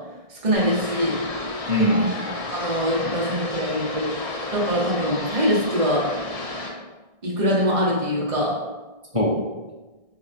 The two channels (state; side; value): late; left; 1.6 ms